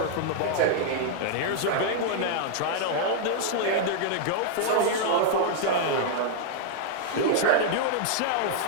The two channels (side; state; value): both; different; correlation -0.01